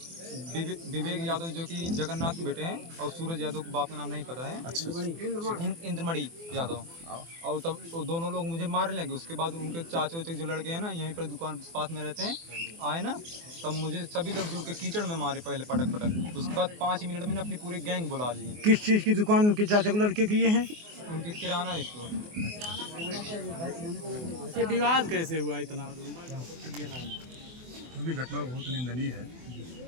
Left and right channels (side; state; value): left; late; 24 ms